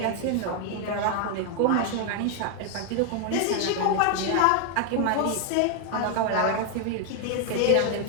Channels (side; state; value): both; different; correlation 0.00